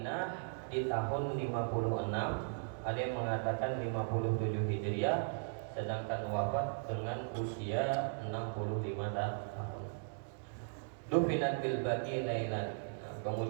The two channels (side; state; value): left; silent; digital silence